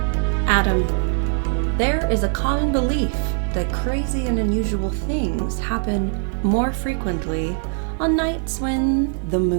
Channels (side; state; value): left; silent; 60 dB below the other